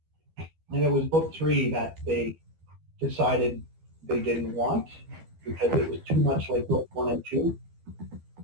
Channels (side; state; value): left; late; 12 ms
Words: And it was book 3 that they decided they didn't want because it was too much like book 1 and 2.